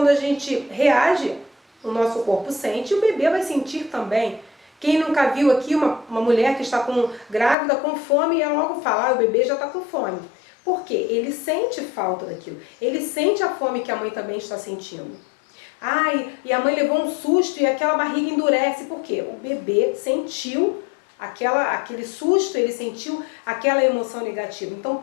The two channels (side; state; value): right; drops out; at 7.6 s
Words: a gente reage, o nosso corpo sente e o bebê vai sentir também. Quem nunca viu aqui uma mulher que está grávida com fome e ela logo fala, o bebê já está com fome. Por quê? Ele sente falta daquilo. Ele sente a fome que a mãe também está sentindo. E a mãe levou um susto e aquela barriga endurece. Por quê? O bebê sentiu aquele susto, ele sentiu aquela emoção negativa. Então